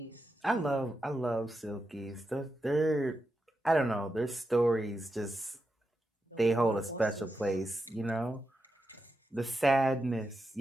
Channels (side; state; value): both; normal; correlation 0.87